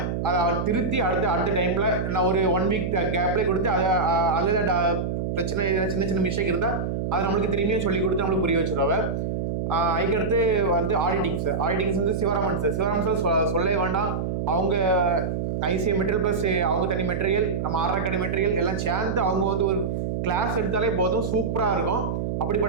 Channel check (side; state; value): right; noise; hum, 2 dB below the sound